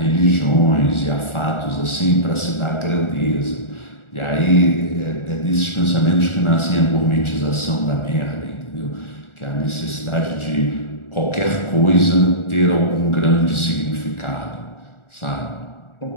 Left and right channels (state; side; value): late; right; 1.4 ms